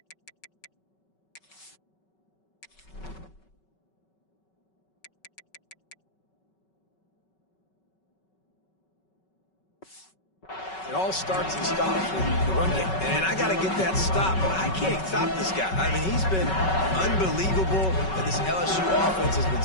it all starts and stops with the run game. And I got to get that stop, but I can't stop this guy. I mean, he's been unbelievable, and this LSU offense has been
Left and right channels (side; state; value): right; late; 5.3 ms